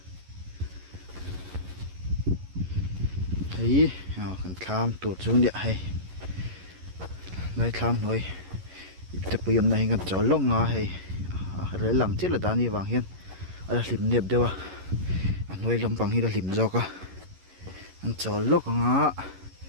hei kan thlam tur chu ni hei lai thlam noi te puyam na hingan chol lo nga hei re lang chila dani wang hian ala hlim nep dewa anoi lampang hi la hlim zoka an chol lo nga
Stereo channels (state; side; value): late; left; 11 ms